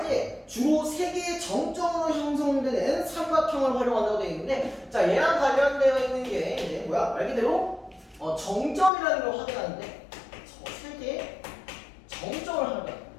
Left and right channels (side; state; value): right; drops out; at 8.9 s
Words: 때 주로 3개의 정점으로 형성되는 삼각형을 활용한다고 되어 있는데 자 얘랑 관련되어 있는 게 이제 뭐야? 말 그대로 정점이라는 걸 확인하는데 3개의 정점을 하는 거야.